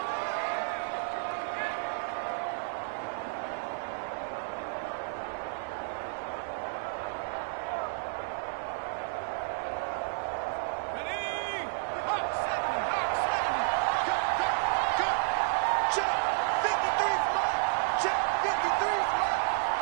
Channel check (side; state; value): left; silent; 57 dB below the other